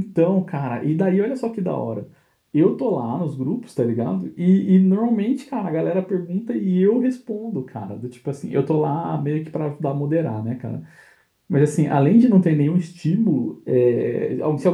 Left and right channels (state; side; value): identical; both; correlation 1.00